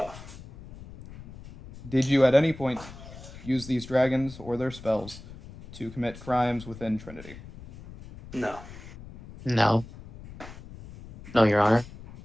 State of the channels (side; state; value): left; noise; rumble, 16 dB below the sound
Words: Did you at any point use these dragons or their spells to commit crimes within Trinity? No. No. No, Your Honor.